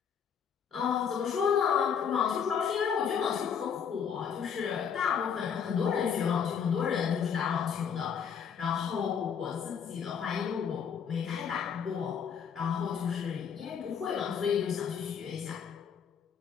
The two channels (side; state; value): right; quieter; 7.3 dB